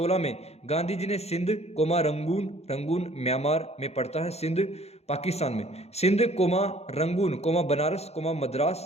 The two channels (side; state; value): right; late; 0.31 ms